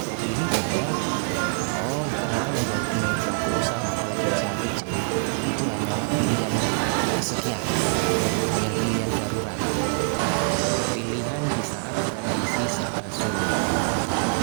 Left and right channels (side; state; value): left; silent; 62 dB below the other